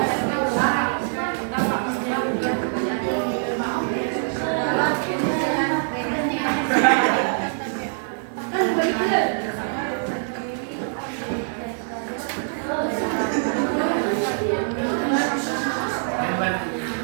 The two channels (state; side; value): silent; left; digital silence